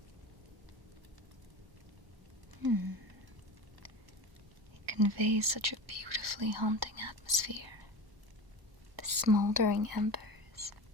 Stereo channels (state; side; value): late; left; 1.1 ms